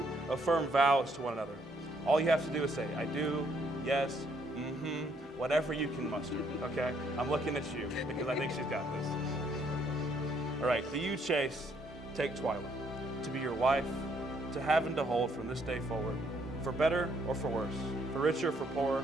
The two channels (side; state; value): both; normal; correlation 0.69